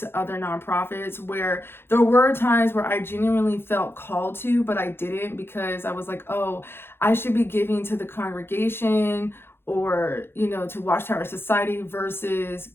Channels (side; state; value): right; late; 0.11 ms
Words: other nonprofits, where there were times where I genuinely felt called to, but I didn't, because I was like, oh, I should be giving to the congregation or, you know, to Watchtower Society versus